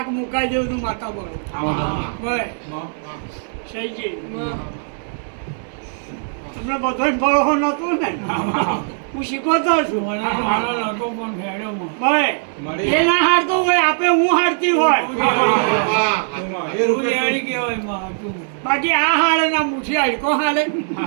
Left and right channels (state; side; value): silent; left; digital silence